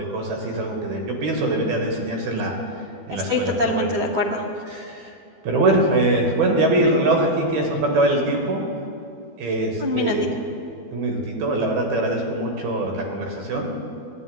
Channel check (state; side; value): late; left; 12 ms